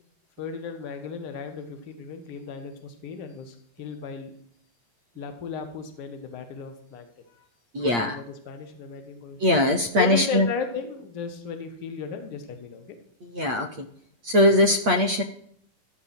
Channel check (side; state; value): left; late; 8.6 ms